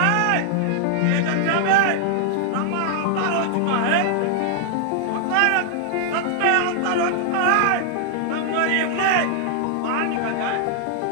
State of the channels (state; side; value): different; both; correlation 0.00